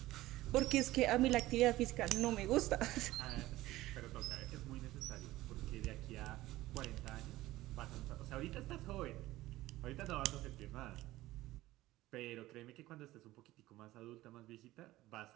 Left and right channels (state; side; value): quieter; left; 16.9 dB